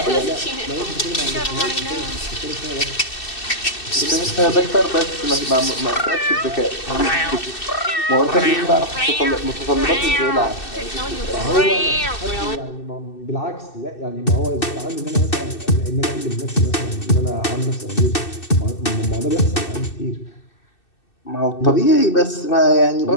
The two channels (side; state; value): right; late; 2.6 ms